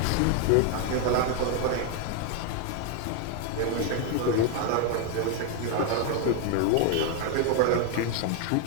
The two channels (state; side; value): different; both; correlation 0.01